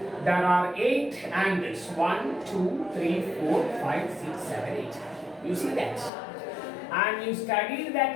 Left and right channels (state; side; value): drops out; right; at 6.1 s